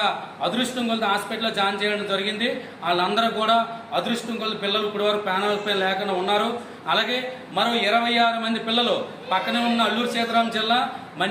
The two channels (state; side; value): identical; both; correlation 1.00